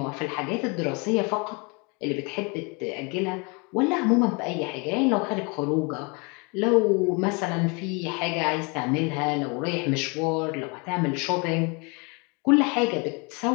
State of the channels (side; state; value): right; quieter; 31.0 dB